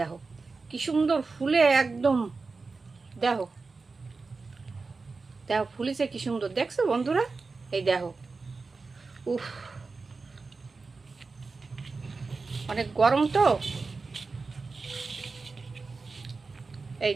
কি সুন্দর ফুলে একদম, দেখো দেখো ফুলিছে কি সুন্দর, দেখছো বন্ধুরা? এই দেখো, উফ অনেক গরম তো, এই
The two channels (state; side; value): quieter; left; 4.1 dB